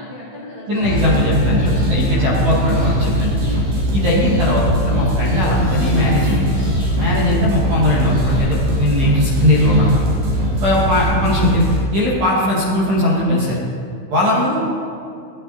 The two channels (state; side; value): late; left; 15 ms